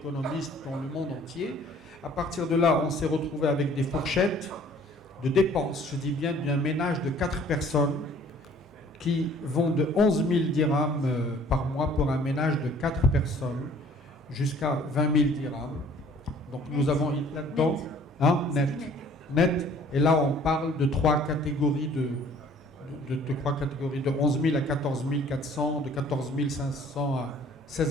dans le monde entier. À partir de là, on s'est retrouvé avec des fourchettes de dépenses, je dis bien d'un ménage de 4 personnes qui vont de 11 000 dirhams par mois pour un ménage de 4 personnes jusqu'à 20 000 dirhams. Donc nous avons là-dedans, net. Et là, on parle de 3 catégories de 11 000 à 14 400, de 14 500 à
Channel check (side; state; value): both; normal; correlation 0.55